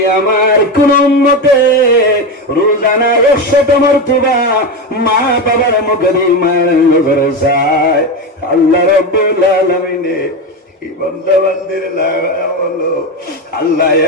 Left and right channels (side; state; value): both; normal; correlation 0.17